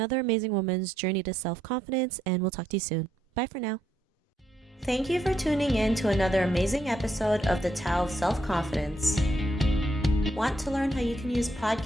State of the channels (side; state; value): both; normal; correlation 0.76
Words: amazing woman's journey to self-confidence. And we'll talk to you soon. Bye for now. Thank you for tuning in to another amazing episode of the Tao of Self-Confidence. Want to learn how you can use